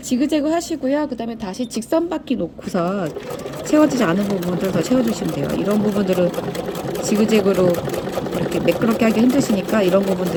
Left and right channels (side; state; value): both; identical; correlation 1.00